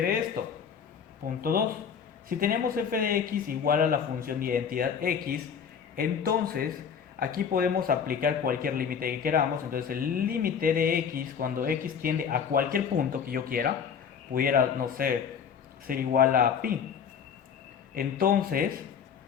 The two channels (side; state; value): right; quieter; 7.2 dB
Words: esto? Punto 2. Si tenemos f de x igual a la función de identidad x, entonces aquí podemos aplicar cualquier límite que queramos. Entonces el límite de x cuando x tiende a cualquier punto que yo quiera, pudiera, no sé, ser igual a pi. Entonces,